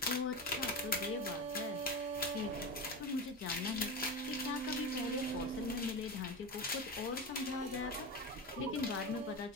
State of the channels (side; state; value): both; normal; correlation 0.22